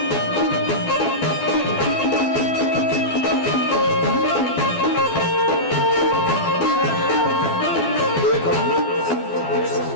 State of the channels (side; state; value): right; late; 12 ms